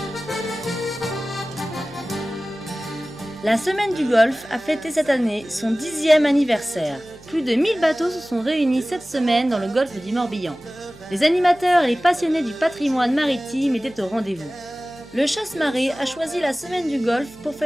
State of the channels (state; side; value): noise; right; hum, 24 dB below the sound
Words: La Semaine du Golfe a fêté cette année son 10e anniversaire. Plus de 1000 bateaux se sont réunis cette semaine dans le golfe du Morbihan. Les animateurs et les passionnés du patrimoine maritime étaient au rendez-vous. Le Chasse-Marée a choisi la Semaine du Golfe pour